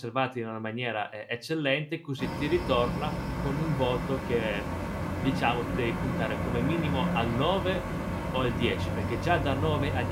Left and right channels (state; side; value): identical; both; correlation 1.00